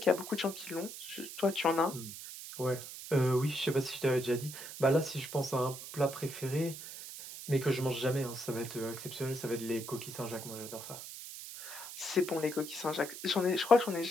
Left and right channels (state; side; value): noise; right; hiss, 11 dB below the sound